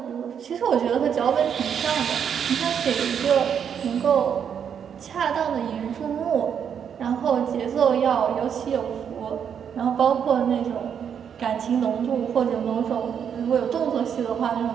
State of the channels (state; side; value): quieter; left; 7.9 dB